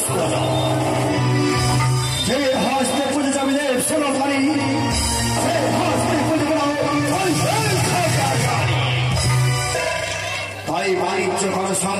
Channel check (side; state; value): both; identical; correlation 1.00